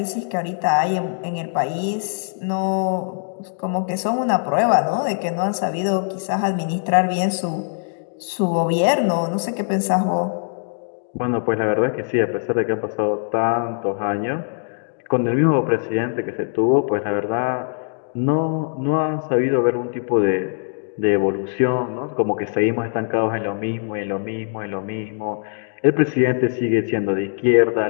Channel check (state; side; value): silent; right; digital silence